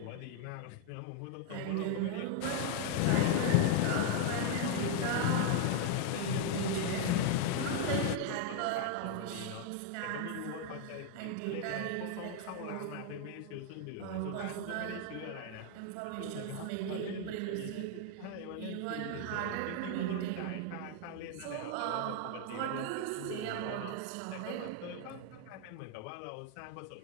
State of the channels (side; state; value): both; different; correlation 0.00